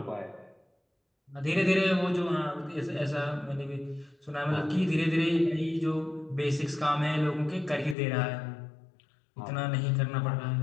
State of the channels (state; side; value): drops out; right; at 8.0 s